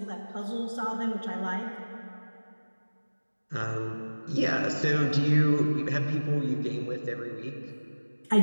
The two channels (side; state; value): both; inverted; correlation -1.00